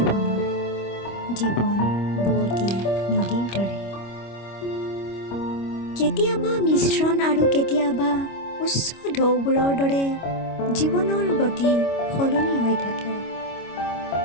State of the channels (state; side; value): late; right; 25 ms